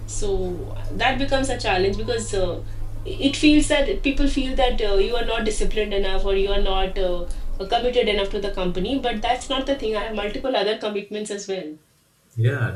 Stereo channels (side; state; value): both; identical; correlation 1.00